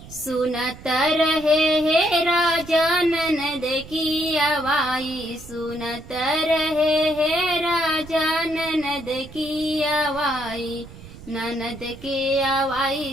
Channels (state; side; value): noise; right; rumble, 17 dB below the sound